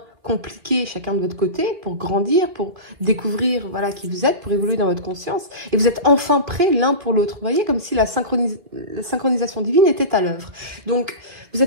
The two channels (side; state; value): left; late; 2.2 ms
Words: compliqué, chacun de votre côté, pour grandir, pour découvrir voilà, qui vous êtes, pour évoluer dans votre conscience. Et vous êtes enfin prêts l'un pour l'autre. Vous voyez, comme si la synchronisation divine était à l'œuvre. Donc, vous